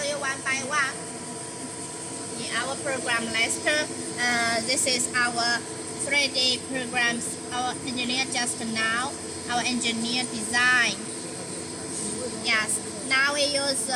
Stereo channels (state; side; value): identical; both; correlation 1.00